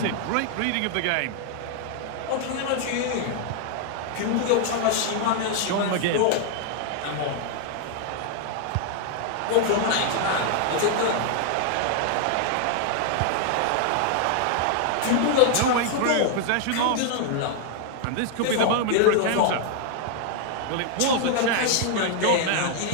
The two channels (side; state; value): both; different; correlation 0.00